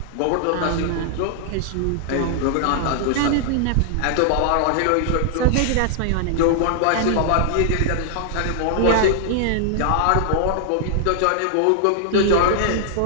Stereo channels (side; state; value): both; different; correlation -0.01